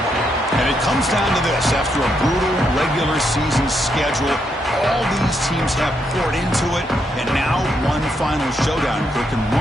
And it comes down to this. After a brutal regular season schedule, all these teams have poured into it. And now one final showdown. And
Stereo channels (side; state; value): both; normal; correlation 0.78